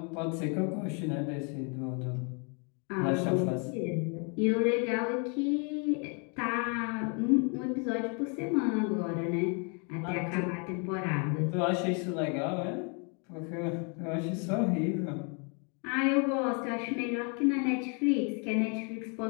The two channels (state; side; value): quieter; right; 36.7 dB